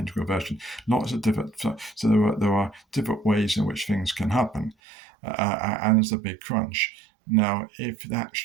version, lots of different. So there are different ways in which things can happen, and there's a Big Crunch. Now, if that's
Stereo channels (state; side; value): drops out; left; at 4.8 s